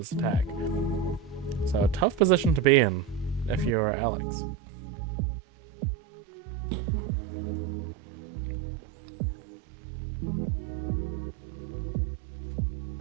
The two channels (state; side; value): drops out; left; at 3.8 s